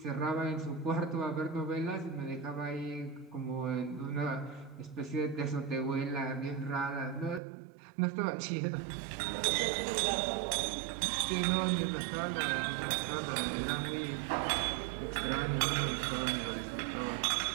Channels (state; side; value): drops out; left; at 7.4 s